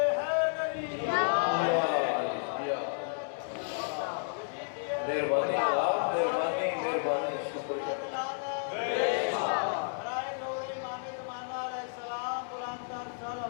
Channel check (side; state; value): right; silent; digital silence